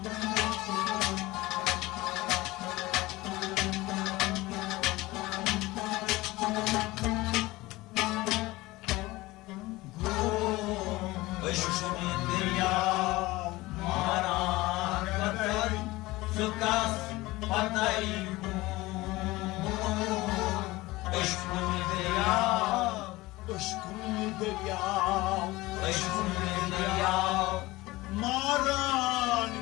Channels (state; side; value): quieter; right; 19.8 dB